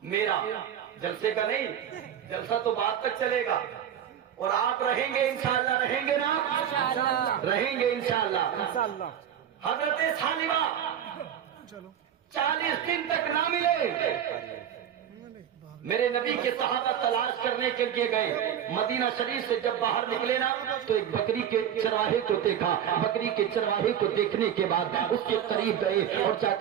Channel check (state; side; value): quieter; left; 9.6 dB